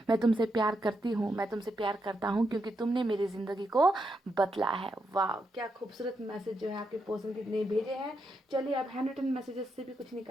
मैं तुमसे प्यार करती हूँ, मैं तुमसे प्यार करता हूँ क्योंकि तुमने मेरी ज़िंदगी को बदला है। वाह, क्या खूबसूरत मैसेज जो है आपके पर्सन कितने भेजे हैं। चलिए अब हैंड रिटन मैसेजेस से भी कुछ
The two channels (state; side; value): normal; both; correlation 0.82